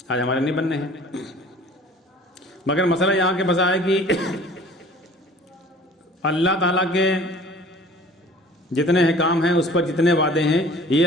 آج ہمارے نہیں بننے ہیں۔ مگر مسئلہ یہاں کے بس ہے کہ اللہ تعالیٰ کے جتنے احکام ہیں، اس پر جتنے وعدے ہیں، یہ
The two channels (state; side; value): normal; both; correlation 0.48